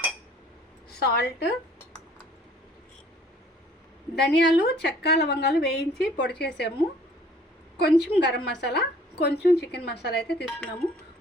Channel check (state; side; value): normal; both; correlation 0.55